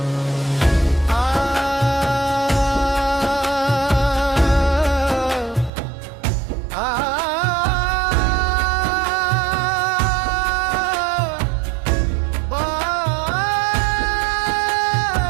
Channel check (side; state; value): left; drops out; at 5.7 s